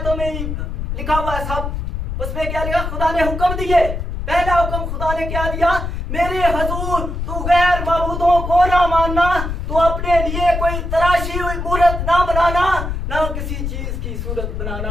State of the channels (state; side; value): noise; left; rumble, 4 dB below the sound